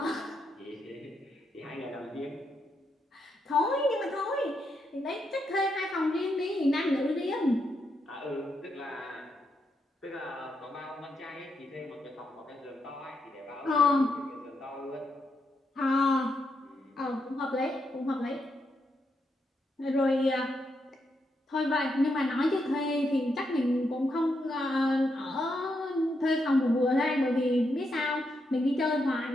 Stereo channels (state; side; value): normal; both; correlation 0.81